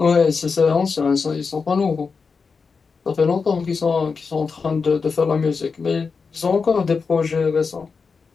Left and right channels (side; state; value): right; quieter; 5.0 dB